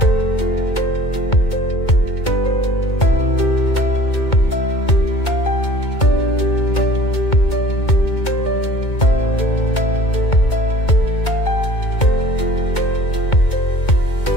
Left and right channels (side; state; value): right; late; 2.2 ms